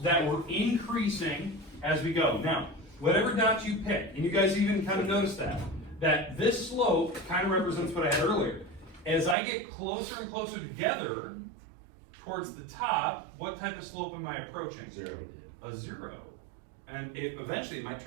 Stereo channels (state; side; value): drops out; left; at 9.3 s